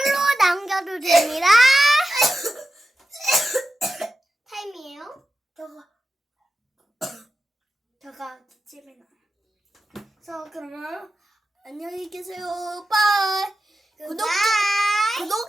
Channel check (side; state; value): both; normal; correlation 0.91